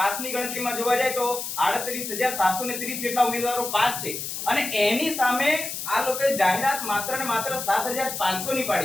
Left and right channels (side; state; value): left; noise; hiss, 6 dB below the sound